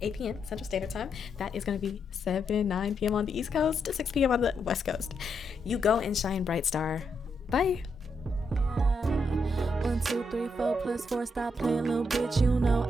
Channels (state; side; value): normal; both; correlation 0.80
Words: p.m. Central Standard Time. That is going to be 9 p.m. on the East Coast, 6 p.m. on the West Coast. You go and shine bright, star. Bye. 1, 2, 3, 4 plus 4. Stop playing, little bitch. You know